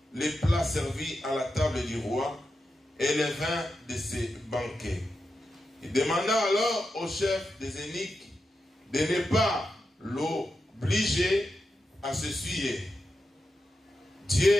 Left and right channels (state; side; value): normal; both; correlation 0.88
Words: les plats servis à la table du roi et les vins de ses banquets. Il demanda alors au chef des eunuques de ne pas l'obliger à se souiller. Dieu